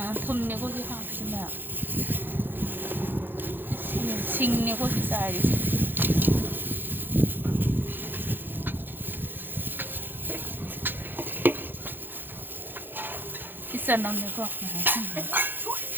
ꯊꯨꯝꯅꯦ ꯀꯣꯁꯤ ꯍꯥꯞꯁꯤꯅ ꯁꯤꯡꯅꯦ ꯀꯣꯁꯤ ꯆꯥꯏꯔꯤꯁꯦ ꯆꯅꯝꯅꯦꯀꯣ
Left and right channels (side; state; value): left; late; 0.096 ms